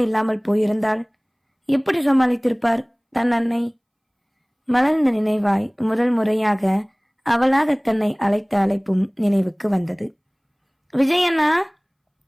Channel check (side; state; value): both; identical; correlation 1.00